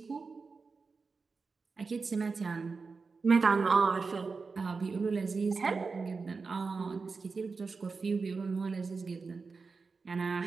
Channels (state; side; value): quieter; left; 4.5 dB